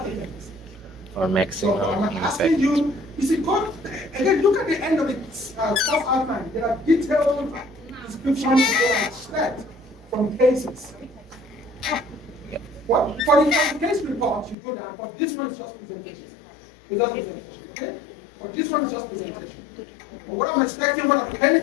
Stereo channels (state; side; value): drops out; right; at 14.6 s